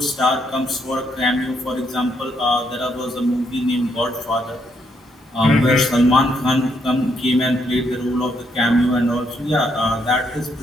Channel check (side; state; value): both; normal; correlation 0.75